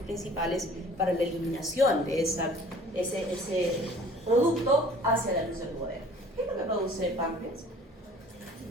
para la eliminación de ese producto hacia la luz del duodeno. ¿Qué es lo que produce el páncreas?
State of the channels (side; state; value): both; normal; correlation 0.50